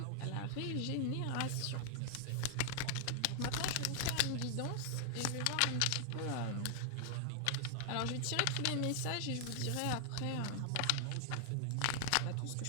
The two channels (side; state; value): both; different; correlation 0.00